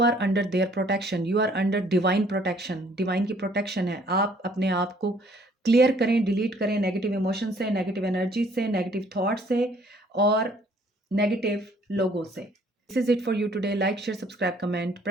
under their protection, you are under divine protection. Divine की प्रोटेक्शन है। आप अपने आप को क्लियर करें, डिलीट करें नेगेटिव इमोशन से, नेगेटिव एनर्जी से, नेगेटिव थॉट से और नेगेटिव लोगों से। This is it for you today. Like, share, subscribe, comment,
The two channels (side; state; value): both; normal; correlation 0.60